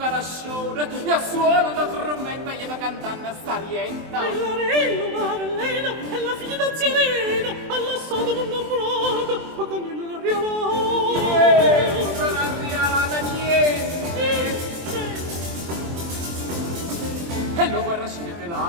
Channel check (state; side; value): late; left; 23 ms